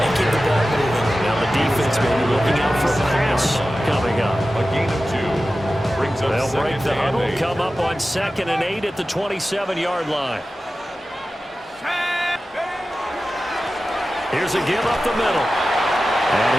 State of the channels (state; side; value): normal; both; correlation 0.94